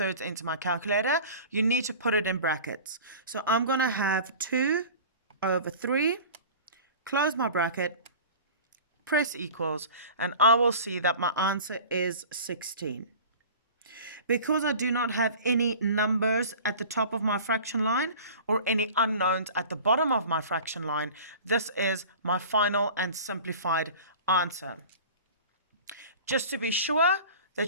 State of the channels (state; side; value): inverted; both; correlation -0.40